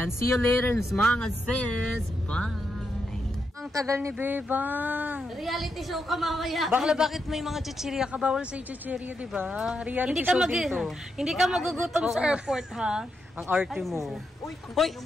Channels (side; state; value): both; normal; correlation 0.83